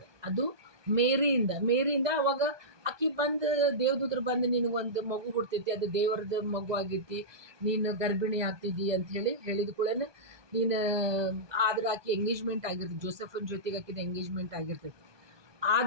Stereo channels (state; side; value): late; left; 1.2 ms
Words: ಅದು ಮೇರಿಯಿಂದ ಅವಾಗ ಆಕಿ ಬಂದು ದೇವದೂತರು ಬಂದು ನಿನಗೊಂದು ಮಗು ಹುಡ್ತೈತಿ, ಅದು ದೇವರದ ಮಗು ಆಗೈತಿ, ನೀನು ಗರ್ಭಿಣಿ ಆಗ್ತಿದ್ದಿ ಅಂಥೇಳಿ ಹೇಳಿದ ಕೂಡ ನೀನು, ಆದ್ರೆ ಆಕೆ ಎಂಗೇಜ್ಮೆಂಟ್ ಆಗಿರ್ತೈತಿ, ಜೋಸೆಫನ್ ಜೊತೆಗೆ ಆಕಿದ ಎಂಗೇಜ್ಮೆಂಟ್ ಆಗಿರ್ತೈತಿ.